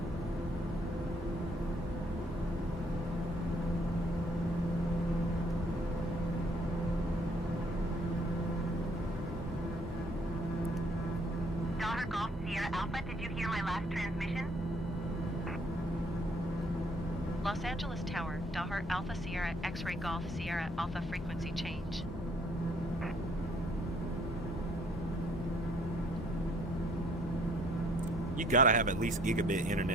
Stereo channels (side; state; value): both; normal; correlation 0.63